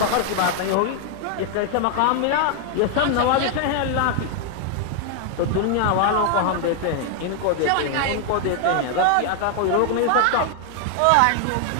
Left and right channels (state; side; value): different; both; correlation 0.00